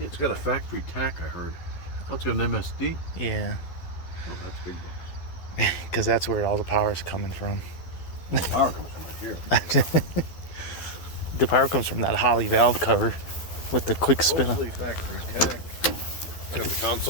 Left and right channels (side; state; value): right; late; 12 ms